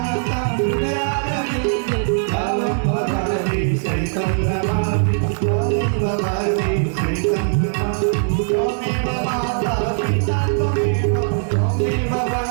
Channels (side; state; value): left; silent; digital silence